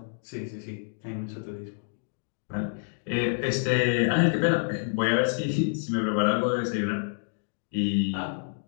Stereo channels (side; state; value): right; silent; digital silence